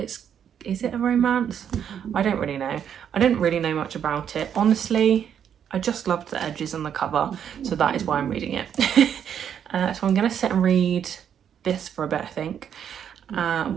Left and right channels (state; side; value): quieter; left; 8.7 dB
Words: it a romance? I don't really know. I didn't really know much about it. Honestly, I just loved the edges on the cover, so that is why I'm reading it. So I'm going to sit and read this for a bit, I think,